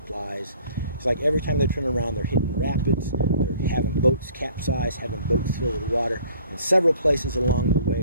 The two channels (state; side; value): inverted; both; correlation -0.54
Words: It's like every time they turn around, they're hitting rapids, they're having boats capsize, having boats filled with water, and several places along the way